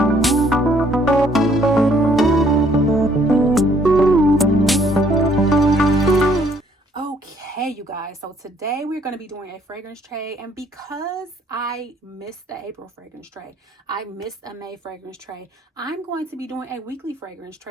Okay, you guys, so today we're going to be doing a fragrance tray, and because I missed the April fragrance tray, I missed a May fragrance tray, I'm going to be doing a weekly fragrance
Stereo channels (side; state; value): both; normal; correlation 0.64